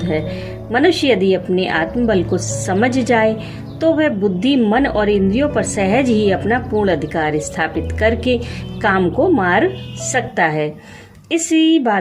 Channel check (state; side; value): identical; both; correlation 1.00